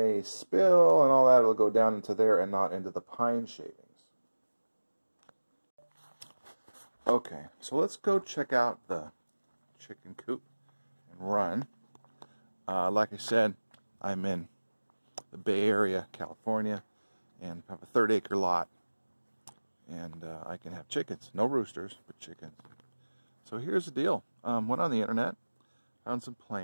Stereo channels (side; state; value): both; inverted; correlation -1.00